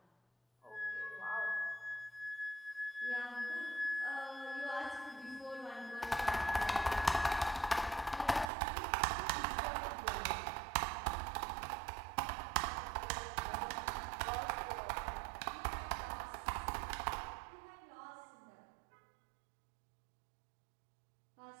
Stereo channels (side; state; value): left; drops out; at 8.5 s